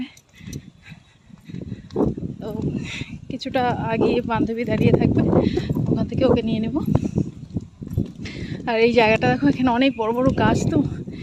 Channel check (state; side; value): identical; both; correlation 1.00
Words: তো কিছুটা আগে বান্ধবী দাঁড়িয়ে থাকবে, ওখান থেকে ওকে নিয়ে নেব। আর এই জায়গাটা দেখো, এখানে অনেক বড় বড় গাছ, তো